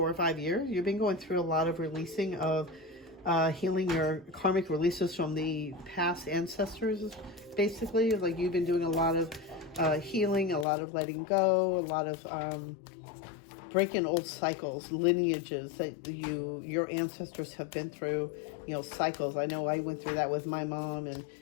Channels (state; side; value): drops out; right; at 10.7 s